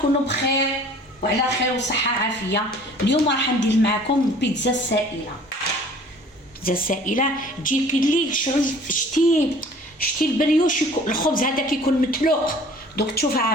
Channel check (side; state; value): both; normal; correlation 0.50